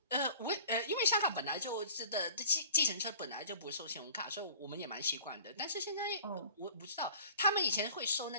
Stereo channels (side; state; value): both; inverted; correlation -0.46